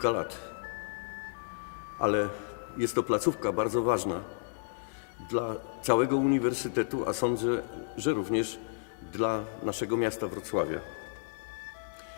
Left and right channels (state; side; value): silent; right; digital silence